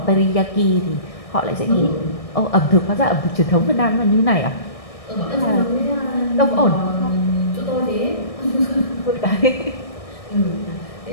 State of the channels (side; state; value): right; late; 1.6 ms